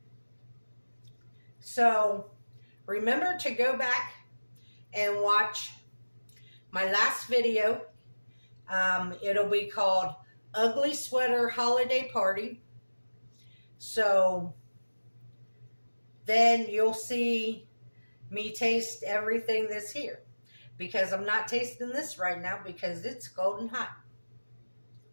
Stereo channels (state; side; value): inverted; both; correlation -1.00